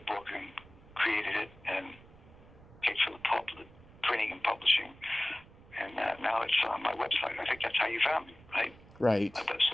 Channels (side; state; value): right; noise; rumble, 22 dB below the sound